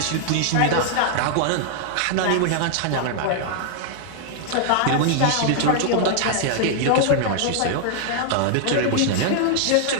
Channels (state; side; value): different; both; correlation -0.01